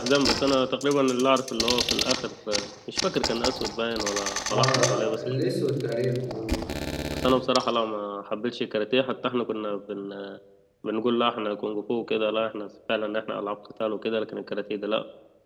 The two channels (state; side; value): identical; both; correlation 1.00